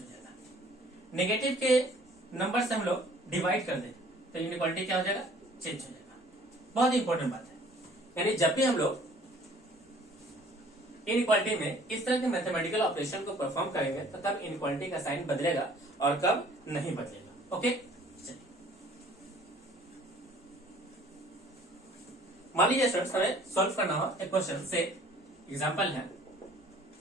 जाएगा। नेगेटिव के नंबर से हम लोग डिवाइड कर दें तो इनइक्वालिटी क्या हो जाएगा, चेंज हो जाएगा। बहुत इंपॉर्टेंट बात है, यानी जब भी हम लोग इनइक्वालिटी में इस तरह के मैथमेटिकल ऑपरेशन को परफॉर्म करेंगे तो तब इनइक्वालिटी का साइन बदलेगा और कब नहीं बदलेगा। ओके, चलिए मान लीजिए स्टूडेंट्स हमें सॉल्व करना हो एक क्वेश्चन से। एग्जांपल है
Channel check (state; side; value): normal; both; correlation 0.55